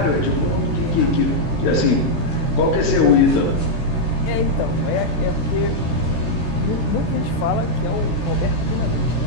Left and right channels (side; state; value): right; late; 14 ms